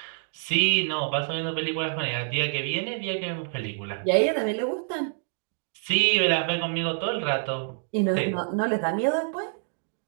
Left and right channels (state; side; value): silent; left; 60 dB below the other